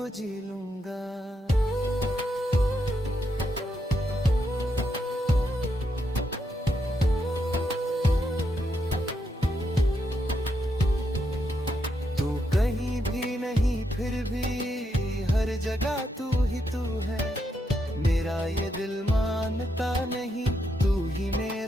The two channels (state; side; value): normal; both; correlation 0.81